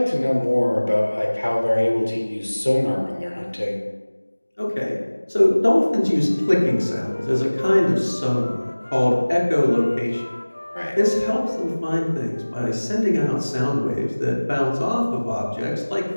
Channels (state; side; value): inverted; both; correlation -1.00